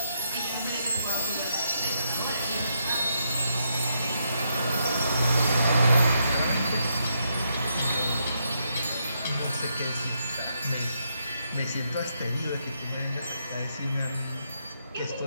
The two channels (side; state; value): both; inverted; correlation -0.79